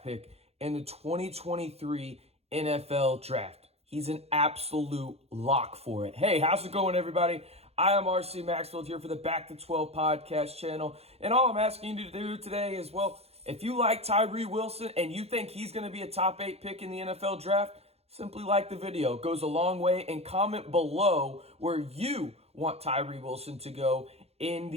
pick in the 2023 NFL draft. He's an absolute lock for it. Hey, how's it going, everybody? I am RC Maxfield here for the Back to 12 podcast channel. And all I'm asking you to do today is, well, if you like Tyree Wilson and you think he's going to be a top 8 pick in the NFL draft, simply like the video. It goes a long way. And comment below where you want Tyree Wilson to go in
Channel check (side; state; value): left; late; 0.30 ms